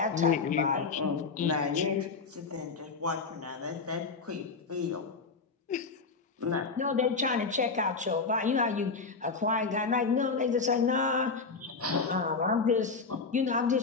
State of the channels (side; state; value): right; quieter; 4.6 dB